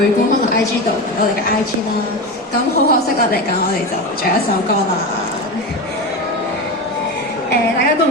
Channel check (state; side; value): normal; both; correlation 0.22